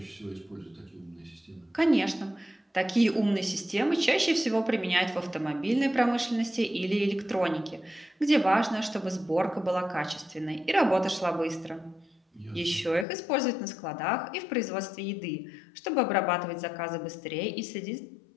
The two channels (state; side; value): drops out; right; at 13.1 s